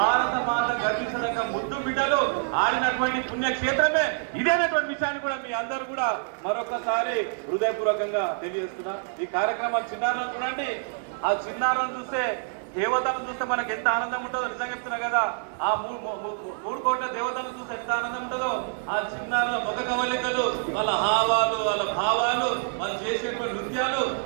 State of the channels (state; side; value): silent; left; 60 dB below the other